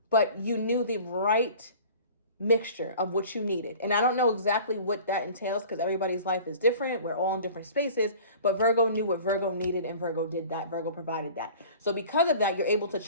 but you knew the right mixture of what you needed. And I don't know exactly what that entails, because everybody's life is different. We're all in different spaces, but Virgo knew what Virgo needed, and Virgo did that. Virgo provided that. So because of that, you're able to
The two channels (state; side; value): inverted; both; correlation -0.44